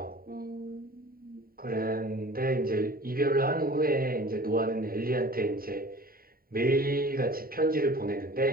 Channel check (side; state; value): left; late; 0.43 ms